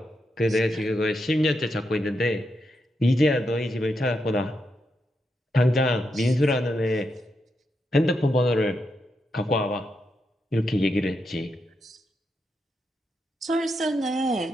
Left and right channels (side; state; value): both; normal; correlation 0.84